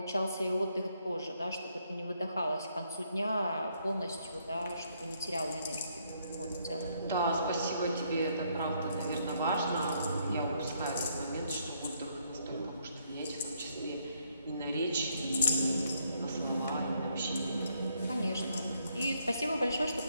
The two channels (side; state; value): both; inverted; correlation -0.72